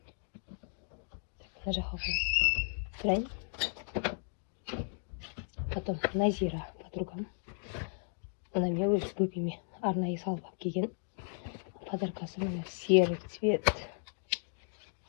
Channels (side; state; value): right; silent; 54 dB below the other